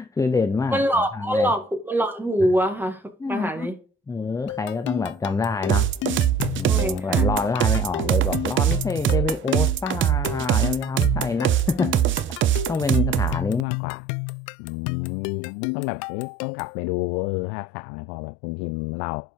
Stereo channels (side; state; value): right; drops out; at 13.7 s